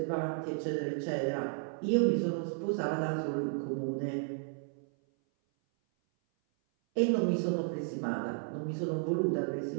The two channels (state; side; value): silent; left; 56 dB below the other